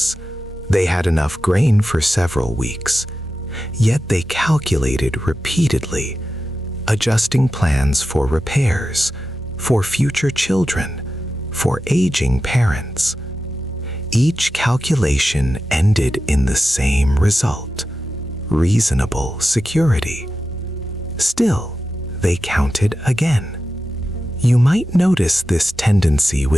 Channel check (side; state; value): both; normal; correlation 0.91